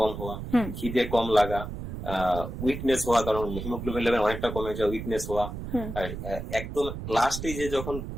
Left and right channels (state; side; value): noise; right; rumble, 7 dB below the sound